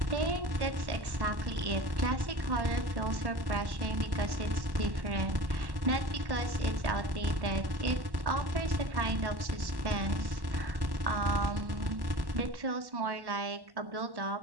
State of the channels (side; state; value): left; late; 1.1 ms